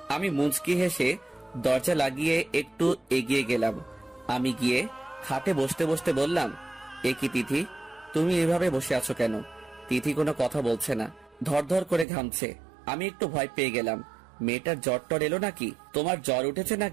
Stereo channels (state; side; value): drops out; left; at 12.1 s